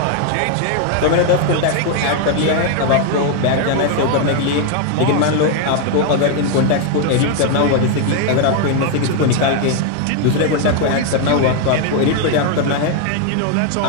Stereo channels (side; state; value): both; different; correlation 0.00